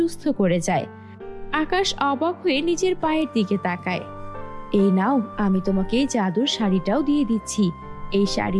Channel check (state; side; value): identical; both; correlation 1.00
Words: করে যায়। আকাশ অবাক হয়ে নিজের পায়ের দিকে তাকায়। এই নাও, আমি তোমাকে এই জাদুর শাড়িটাও দিয়ে দিচ্ছি। এই